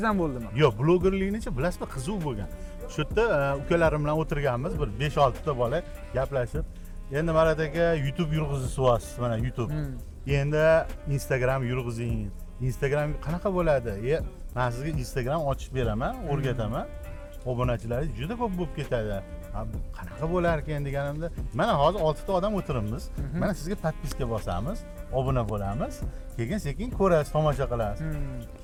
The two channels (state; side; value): identical; both; correlation 1.00